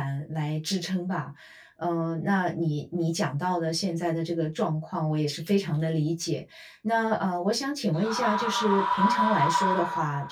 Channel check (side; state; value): both; identical; correlation 1.00